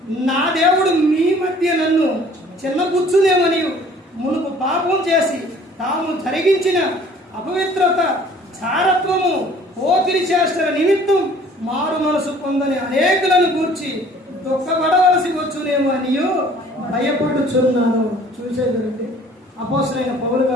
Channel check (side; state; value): both; normal; correlation 0.53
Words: నా దేవుడు మీ మధ్య నన్ను చిన్నపుచ్చునేమని, మునుపు పాపం చేసి తాము జరిగించిన అపవిత్రత, చారత్వము, పోకిరి చేష్టల నిమిత్తం మారు మనసు పొందని అనేకులను గూర్చి దుఃఖపడవలసి వచ్చునేమో అని భయపడుచున్నాను. చూసేదండి అపోస్తలుడైన పౌలు